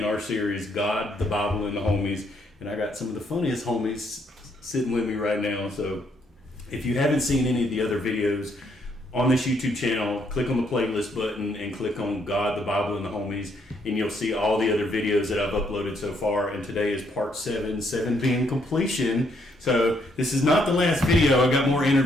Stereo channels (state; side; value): normal; both; correlation 0.72